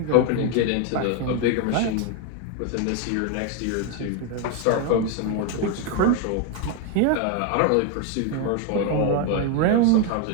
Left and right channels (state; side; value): different; both; correlation 0.01